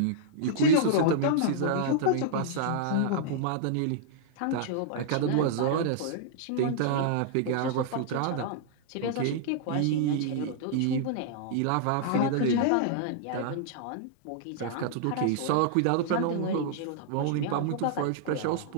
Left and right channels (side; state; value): both; different; correlation -0.01